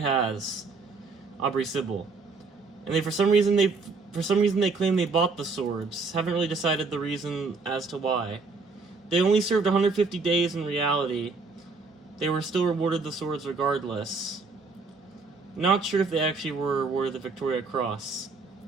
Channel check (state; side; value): quieter; left; 4.2 dB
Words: has. Aubrey Sybil. And for some reason, For some reason, they claim they bought the swords. Haven't really decided the reason as to why. They only served 150 days in reality. They were still rewarded the swords regardless. Not sure if they actually were awarded the Victoria Cross.